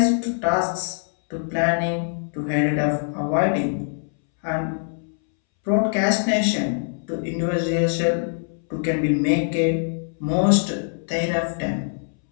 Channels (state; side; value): silent; right; 63 dB below the other